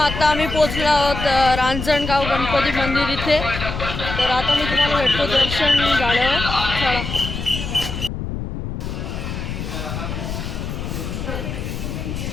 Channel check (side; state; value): left; noise; rumble, 6 dB below the sound